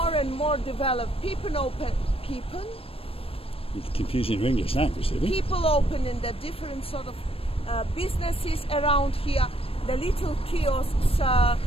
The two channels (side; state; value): right; late; 0.28 ms